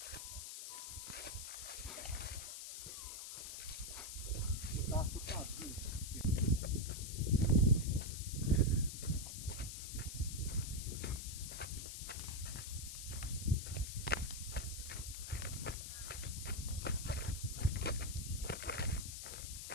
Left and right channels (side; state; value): left; noise; hiss, 7 dB below the sound